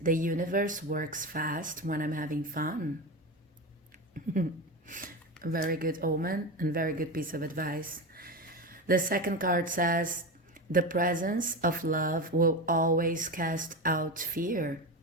universe works fast when I'm having fun. A very good omen and very good piece of advice. The second card says, the presence of love will always cast out fear.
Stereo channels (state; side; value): normal; both; correlation 0.20